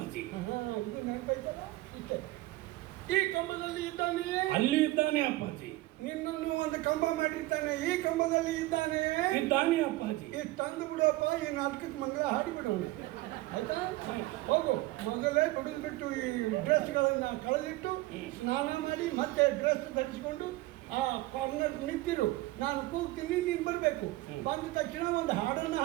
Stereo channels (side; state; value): left; quieter; 18.6 dB